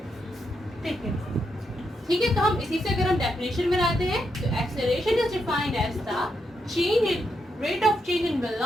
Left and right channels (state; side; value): normal; both; correlation 0.82